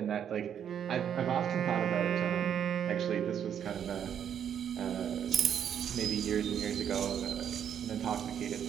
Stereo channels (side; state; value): left; quieter; 8.9 dB